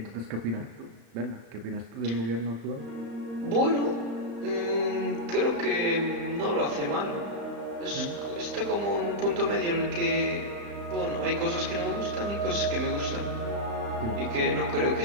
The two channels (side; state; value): left; late; 35 ms